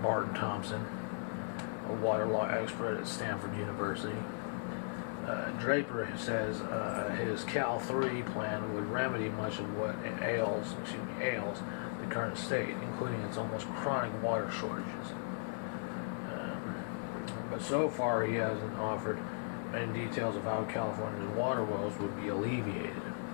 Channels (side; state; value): right; silent; 53 dB below the other